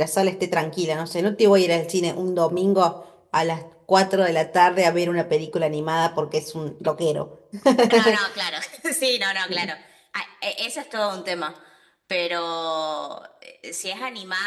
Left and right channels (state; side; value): identical; both; correlation 1.00